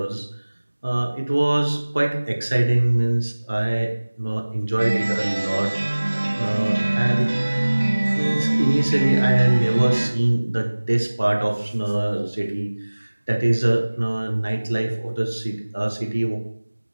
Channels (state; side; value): inverted; both; correlation -1.00